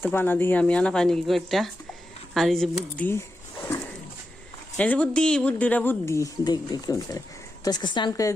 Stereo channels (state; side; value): normal; both; correlation 0.89